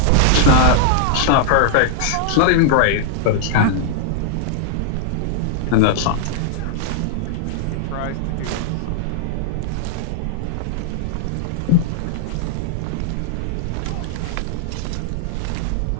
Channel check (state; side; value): different; both; correlation -0.01